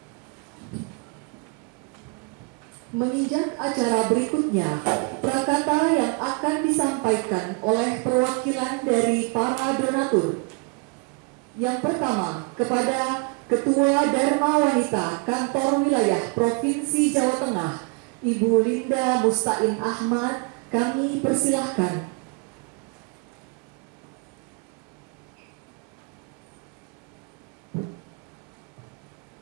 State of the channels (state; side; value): quieter; left; 32.1 dB